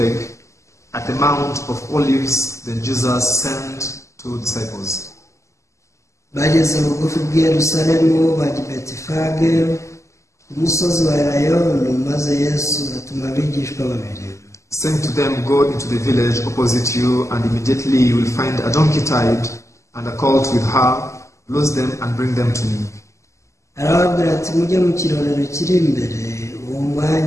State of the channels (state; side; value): late; right; 0.14 ms